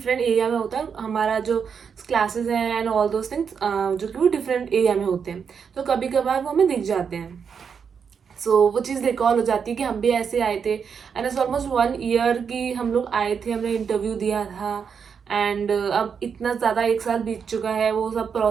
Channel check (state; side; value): quieter; left; 6.6 dB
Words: एरिया में होता है. हमारा जो क्लासेस हैं एंड ऑल दोज थिंग्स जो कि वो डिफरेंट एरिया में होते हैं, तो कभी कभार वो हमें दिख जाते हैं. सो वो चीज़ रिकॉल हो जाती है कि हम भी ऐसे आए थे. एंड इट्स ऑलमोस्ट 1 ईयर की हम लोग आए थे, हमने इंटरव्यू दिया था. एंड अब इतना ज़्यादा 1 साल बीत चुका है, वो सब